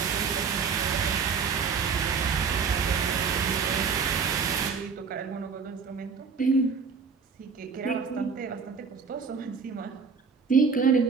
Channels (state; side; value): quieter; left; 5.6 dB